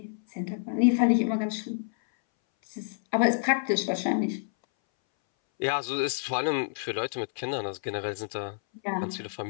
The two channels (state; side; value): silent; right; 59 dB below the other